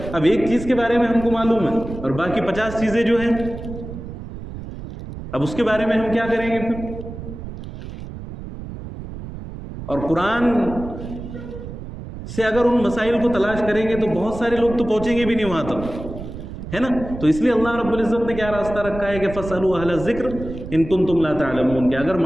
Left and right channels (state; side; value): noise; right; rumble, 10 dB below the sound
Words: اب ایک چیز کے بارے میں ہم کو معلوم ہے اور باقی 50 چیزیں جو ہیں, اب اس کے بارے میں ہم کیا کریں گے پھر؟ اور قرآن سے اگر ان مسائل کو تلاش کریں گے تو بہت سارے لوگ تو پہنچیں گے بھی نہیں وہاں تک, ہے نا. تو اس لیے اللہ رب العزت نے کیا راستہ رکھا ہے کہ فَاسْأَلُوا أَهْلَ الذِّكْرِ إِن كُنتُمْ لَا تَعْلَمُونَ, کہ اگر